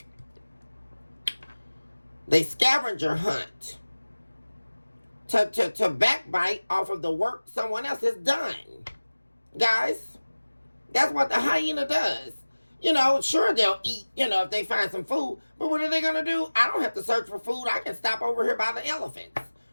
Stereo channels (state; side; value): inverted; both; correlation -1.00